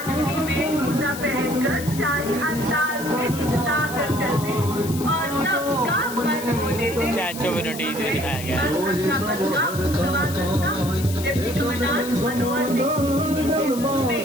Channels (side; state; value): left; noise; hiss, 11 dB below the sound